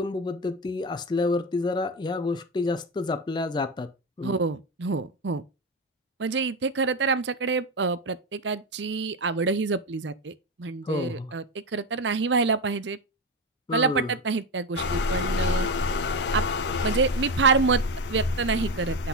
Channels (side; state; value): both; normal; correlation 0.15